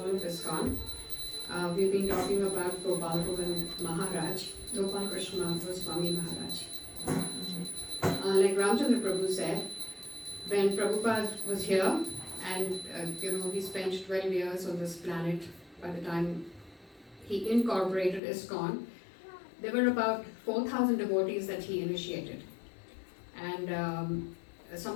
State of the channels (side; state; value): right; drops out; at 18.2 s